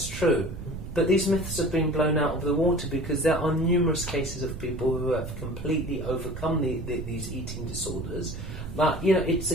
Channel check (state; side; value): noise; right; rumble, 8 dB below the sound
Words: true. But these myths have been blown out of the water, because there are numerous cases of people who have completely overcome these eating disorders. But, it's